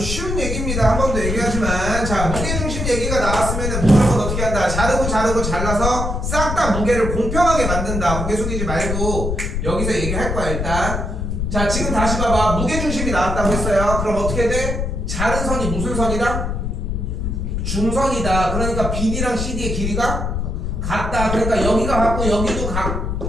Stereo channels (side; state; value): left; noise; rumble, 2 dB below the sound